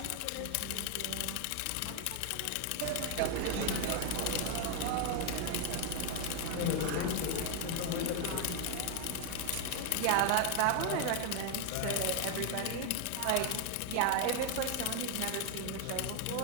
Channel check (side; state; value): both; different; correlation 0.01